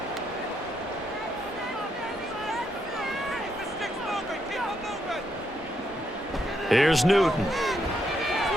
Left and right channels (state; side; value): normal; both; correlation 0.78